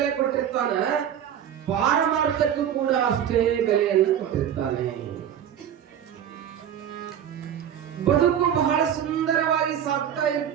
ಕೊಟ್ಟಿರ್ತಾನ, ಪಾರಮಾರ್ಥಕ್ಕೂ ಕೂಡ ಅಷ್ಟೇ ಬೆಲೆಯನ್ನು ಕೊಟ್ಟಿರ್ತಾನೆ. ಬದುಕು ಬಹಳ ಸುಂದರವಾಗಿ ಸಾಗ್ತಾ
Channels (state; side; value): quieter; left; 9.6 dB